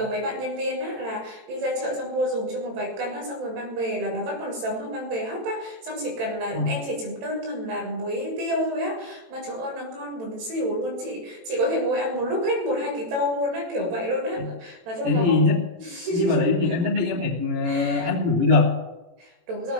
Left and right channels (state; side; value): late; left; 18 ms